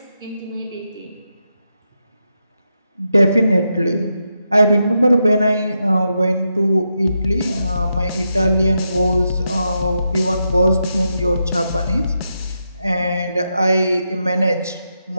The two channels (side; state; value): both; inverted; correlation -0.84